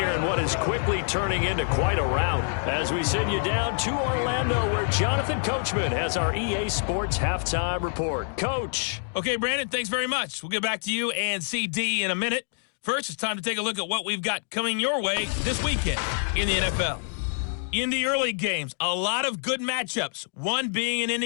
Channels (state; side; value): silent; right; 61 dB below the other